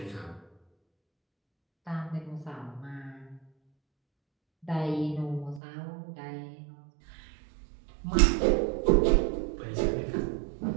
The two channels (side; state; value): left; drops out; at 5.6 s